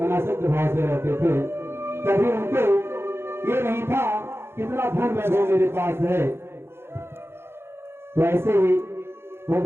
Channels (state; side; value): late; left; 0.12 ms